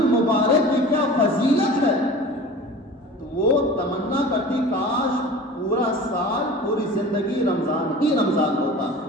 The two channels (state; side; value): normal; both; correlation 0.39